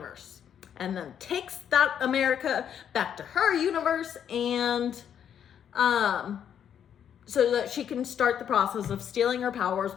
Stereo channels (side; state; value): right; quieter; 8.9 dB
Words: and then takes that America back to her universe, and so that she can start the process of stealing her powers